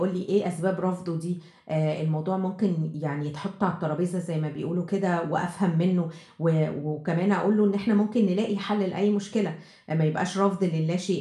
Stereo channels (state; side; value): identical; both; correlation 1.00